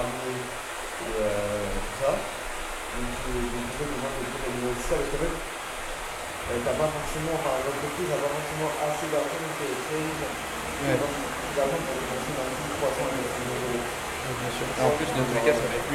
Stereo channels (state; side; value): identical; both; correlation 1.00